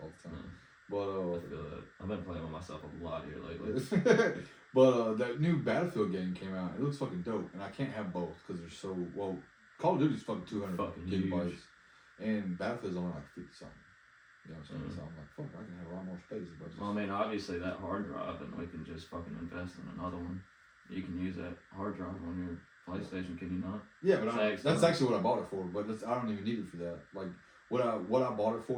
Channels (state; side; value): identical; both; correlation 1.00